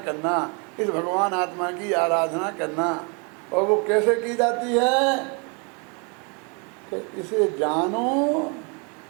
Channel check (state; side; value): quieter; left; 34.1 dB